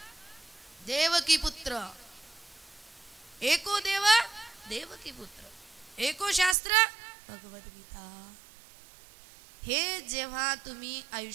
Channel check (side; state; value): left; drops out; at 6.6 s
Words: देवकी पुत्र, एको देव देवकी पुत्र, एको शास्त्र भगवद्गीता. हे जेव्हा तुम्ही